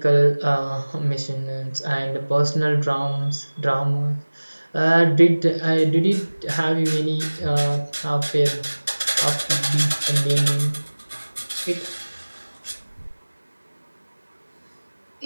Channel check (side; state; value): both; inverted; correlation -1.00